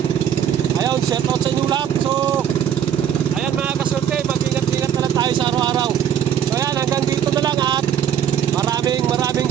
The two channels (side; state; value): left; quieter; 9.3 dB